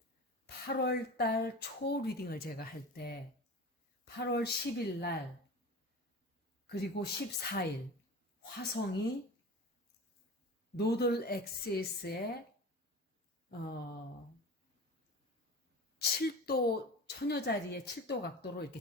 8월 달 초 리딩을 제가 할 때 8월 10일 날 그리고 14일 화성이 노들 엑시스의 7도 천여자리의 7도 각도로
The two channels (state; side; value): normal; both; correlation 0.33